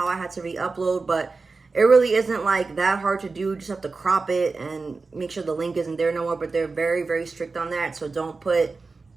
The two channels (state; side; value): quieter; left; 4.1 dB